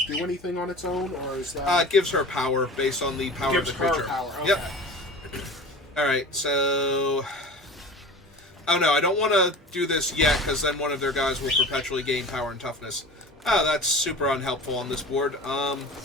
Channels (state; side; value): normal; both; correlation 0.37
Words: do anything on its own, or is that... It gives her power based on the power of the creature. Gives her power, okay. Yep. Alright, so... Oh no, I don't want to do this yet, because then one of their guys will perpetually gain power and toughness. Oh, that's super unhelpful on this board.